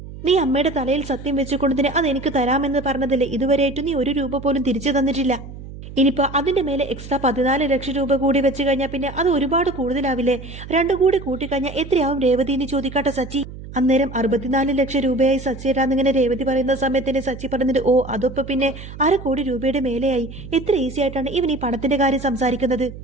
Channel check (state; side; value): noise; right; hum, 13 dB below the sound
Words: നീ അമ്മയുടെ തലയിൽ സത്യം വെച്ചുകൊണ്ടതിന് അത് എനിക്ക് തരാമെന്ന് പറഞ്ഞതല്ലേ, ഇതുവരെയായിട്ട് നീ 1 രൂപ പോലും തിരിച്ചു തന്നിട്ടില്ല. ഇനിയിപ്പോ അതിന്റെ മേലെ എക്സ്ട്രാ 14 ലക്ഷം രൂപ കൂടി വെച്ച് കഴിഞ്ഞാൽ പിന്നെ അത് ഒരുപാട് കൂടുതലാവില്ലേ? 2 കൂടി കൂട്ടിക്കഴിഞ്ഞാൽ എത്രയാവും രേവതി എന്ന് ചോദിക്കാട്ടെ സച്ചി. അന്നേരം 64 ലക്ഷം രൂപയായി സച്ചിയേട്ടാന്നിങ്ങനെ രേവതി പറയുന്ന സമയത്തിന് സച്ചി പറഞ്ഞിട്ട്, ഓ അതൊപ്പം പിന്നെ 1/2 കോടി രൂപയുടെ മേലെയായി. എത്ര ഈസി ആയിട്ടാണ് ഇവൻ ഈ പണത്തിന്റെ കാര്യം സംസാരിക്കുന്നത്.